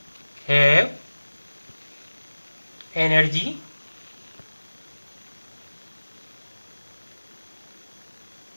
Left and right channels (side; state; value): both; inverted; correlation -1.00